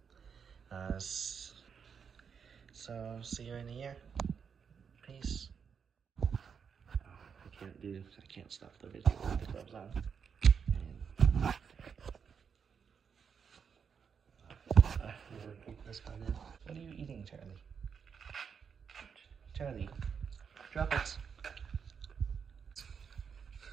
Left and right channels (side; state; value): left; quieter; 6.6 dB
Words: So see you in a year. Peace. I can't stop the video with the gloves on. Keep this one in. What are you eating, Charlie? Charlie, drop it.